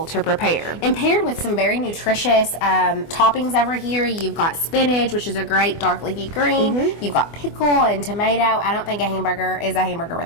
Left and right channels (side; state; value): right; late; 24 ms